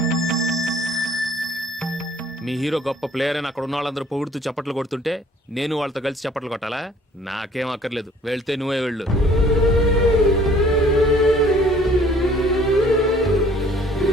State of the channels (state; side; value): normal; both; correlation 0.56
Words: మీ హీరో గొప్ప ప్లేయర్ అని అక్కడ ఉన్న వాళ్ళందరూ పొగుడుతూ చప్పట్లు కొడుతుంటే నేను వాళ్ళతో కలిసి చప్పట్లు కొట్టాలా? నాకేం అక్కర్లేదు. వెళ్తే నువ్వే వెళ్ళు.